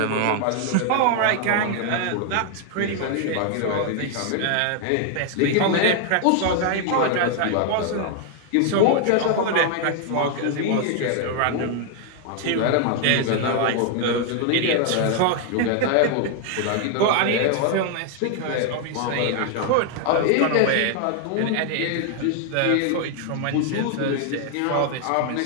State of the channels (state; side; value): different; both; correlation 0.00